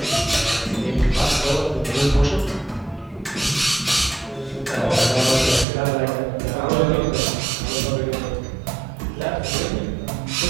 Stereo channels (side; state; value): left; drops out; at 5.7 s